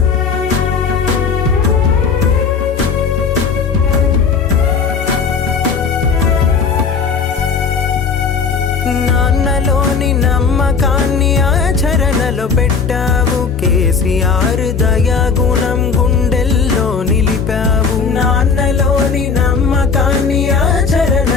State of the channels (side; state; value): right; quieter; 5.6 dB